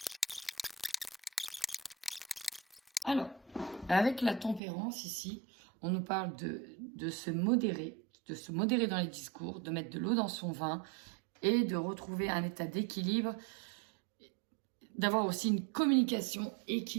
Alors, avec la tempérance ici, on nous parle de se modérer dans les discours, de mettre de l'eau dans son vin et de retrouver un état d'équilibre, d'avoir aussi une communication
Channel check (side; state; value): left; drops out; at 4.6 s